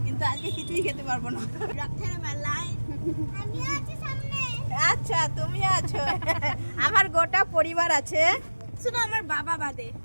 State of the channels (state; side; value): inverted; both; correlation -1.00